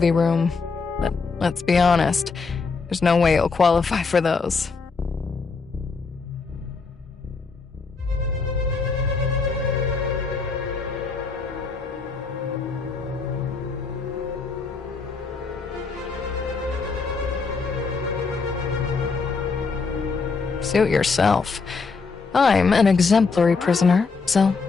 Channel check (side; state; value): right; quieter; 4.6 dB